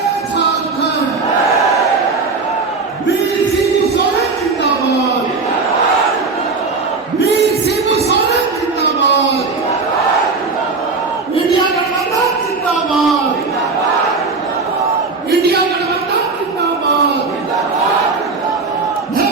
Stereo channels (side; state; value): left; quieter; 4.2 dB